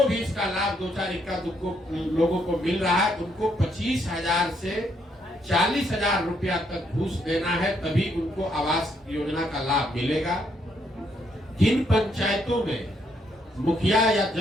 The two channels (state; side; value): normal; both; correlation 0.74